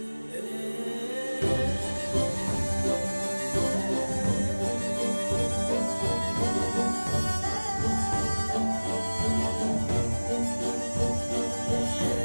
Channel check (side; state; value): both; inverted; correlation -1.00